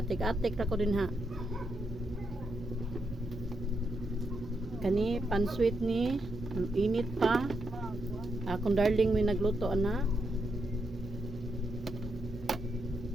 atik-atik ra ko din ha. Kani pansweet ni init pa. Akong darling may nagluto ana.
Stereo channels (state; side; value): normal; both; correlation 0.82